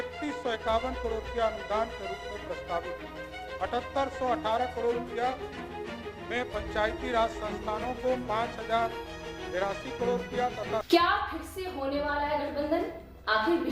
करोड़ रुपया अनुदान के रूप में प्रस्तावित है। 7818 करोड़ रुपया में पंचायती राज संस्थानों को 5083 करोड़ रुपया तथा क्या फिर से होने वाला है गठबंधन? आखिर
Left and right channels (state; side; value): identical; both; correlation 1.00